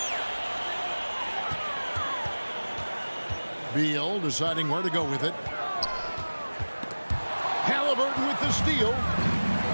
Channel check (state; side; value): inverted; both; correlation -1.00